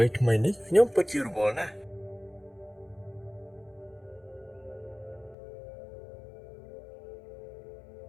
ីនេះខ្ញុំពិតជារវល់ណាស់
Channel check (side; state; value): right; drops out; at 5.4 s